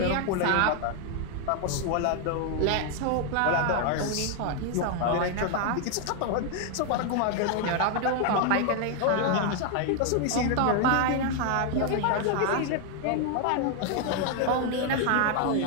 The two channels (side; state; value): both; different; correlation 0.00